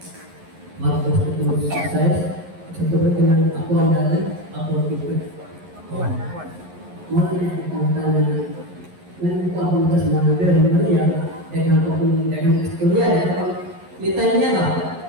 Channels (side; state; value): left; late; 11 ms